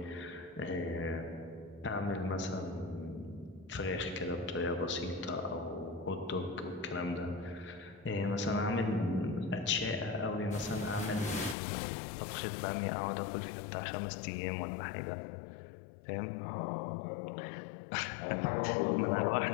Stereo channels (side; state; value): right; drops out; at 11.6 s